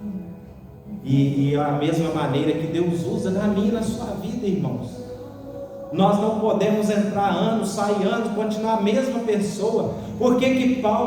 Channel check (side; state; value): both; identical; correlation 1.00